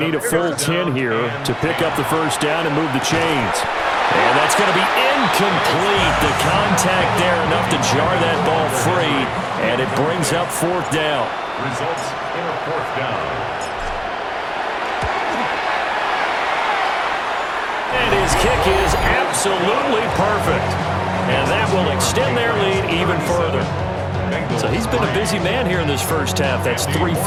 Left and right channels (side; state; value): both; identical; correlation 1.00